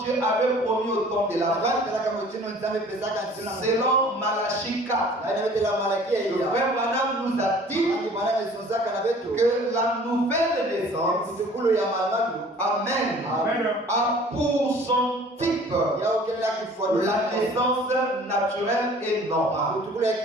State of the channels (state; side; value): normal; both; correlation 0.50